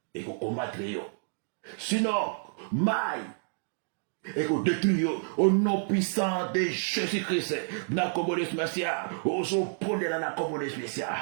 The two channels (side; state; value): left; silent; digital silence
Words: eko combattre yo, sinon mai eko détruire yo. Au nom puissant de Jésus-Christ, na kombo de Masia, ozo pondela na kombo de Masia,